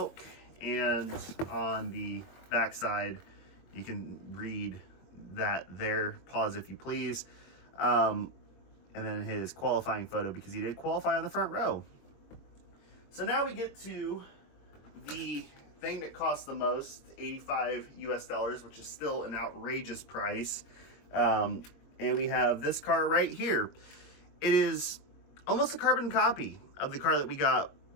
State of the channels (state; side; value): late; right; 22 ms